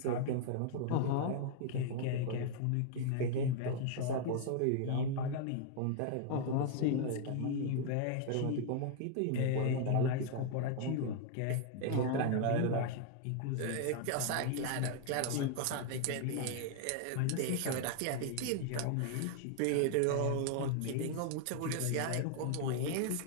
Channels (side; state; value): both; different; correlation 0.00